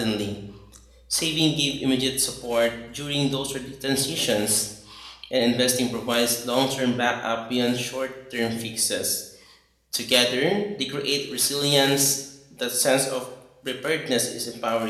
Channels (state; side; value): identical; both; correlation 1.00